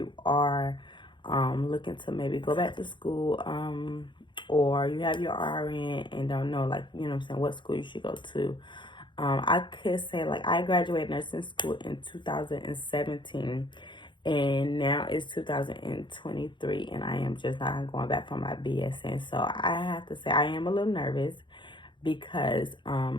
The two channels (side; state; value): right; late; 0.23 ms